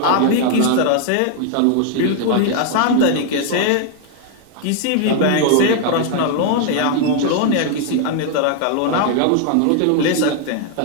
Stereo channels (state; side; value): different; both; correlation 0.00